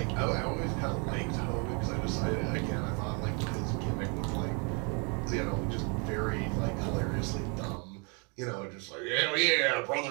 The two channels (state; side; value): quieter; left; 34.5 dB